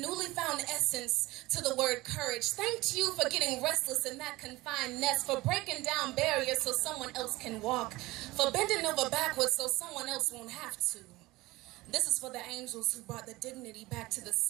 found essence to the word courage. Thanked you for getting restless in that confined nest, for breaking down barriers so someone else can walk, for bending over backwards so someone else won't have to. This is for the angels who brought the dignity back to the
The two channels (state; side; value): quieter; left; 19.9 dB